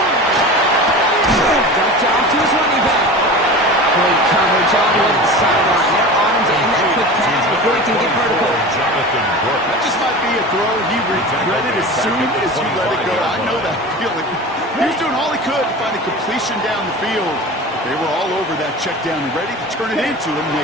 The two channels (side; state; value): both; normal; correlation 0.33